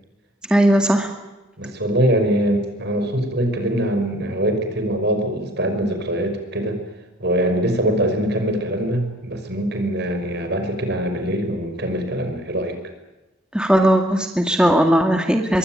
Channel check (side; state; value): both; normal; correlation 0.59